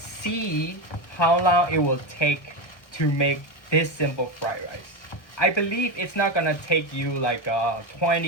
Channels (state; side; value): late; right; 1.1 ms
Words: see how long it will take to make this simple fried rice. I believe it's not gonna take you like